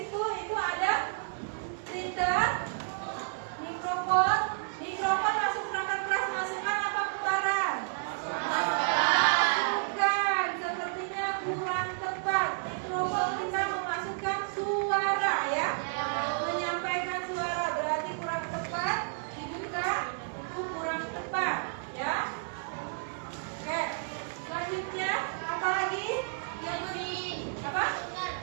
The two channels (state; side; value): silent; left; digital silence